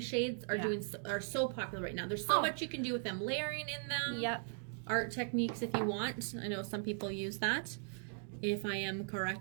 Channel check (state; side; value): silent; left; 52 dB below the other